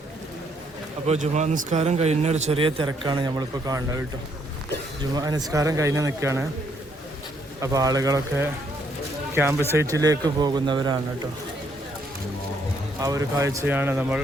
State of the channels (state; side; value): normal; both; correlation 0.71